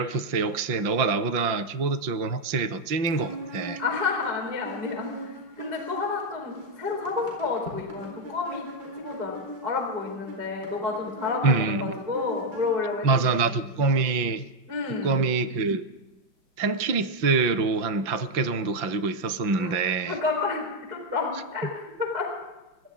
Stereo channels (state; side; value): late; left; 5.8 ms